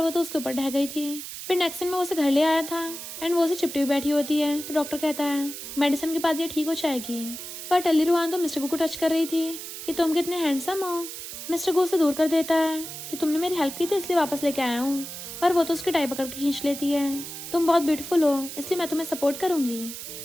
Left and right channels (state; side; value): noise; right; hiss, 9 dB below the sound